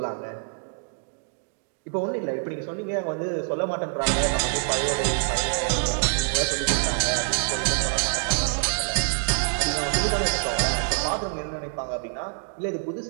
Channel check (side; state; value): left; silent; digital silence